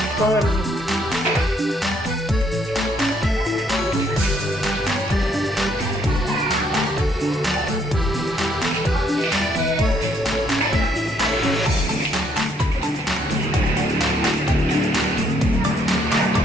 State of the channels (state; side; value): normal; both; correlation 0.69